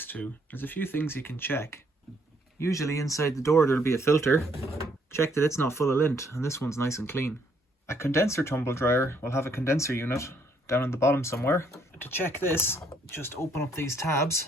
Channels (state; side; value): normal; both; correlation 0.68